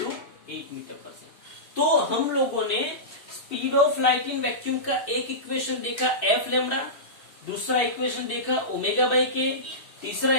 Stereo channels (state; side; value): late; right; 2.6 ms